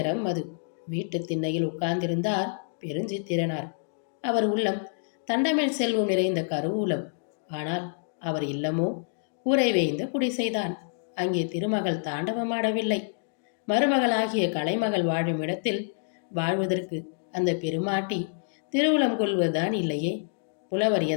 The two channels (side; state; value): right; silent; digital silence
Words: அது. வீட்டு திண்ணையில் உட்கார்ந்திருந்தார் பெருஞ்சித்திரனார். அவர் உள்ளம் தண்டமேல் செல்வம் நிறைந்த கருவூலம். ஆனால் அவர் இல்லமோ கூரை வேய்ந்த குடிசைதான். அங்கே திருமகள் தாண்டவமாடவில்லை. மருமகளாகிய கலைமகள் வாழும் இடத்தில் வாழ்வதற்கு அந்த பெருமாட்டி திருவுளம் கொள்வதுதான் இல்லையே. புலவர்